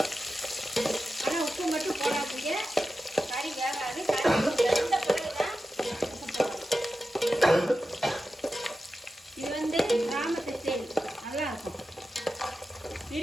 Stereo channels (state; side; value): normal; both; correlation 0.92